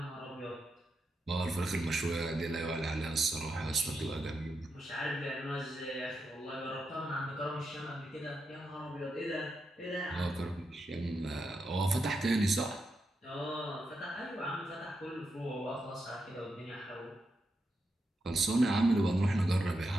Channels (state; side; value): normal; both; correlation 0.85